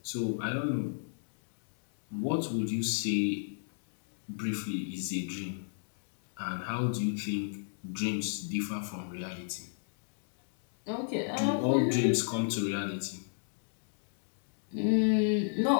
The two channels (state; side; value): silent; right; digital silence